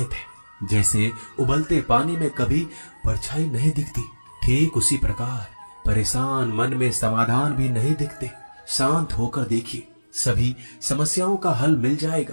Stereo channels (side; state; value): both; inverted; correlation -1.00